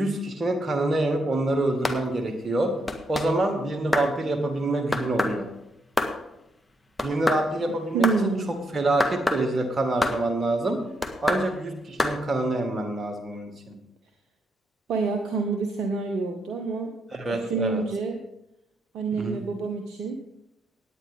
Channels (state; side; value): normal; both; correlation 0.78